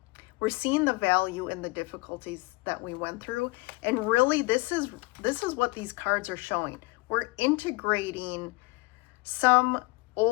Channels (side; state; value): right; quieter; 24.1 dB